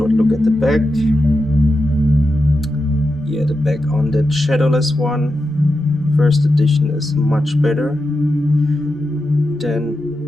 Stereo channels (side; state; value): both; normal; correlation 0.88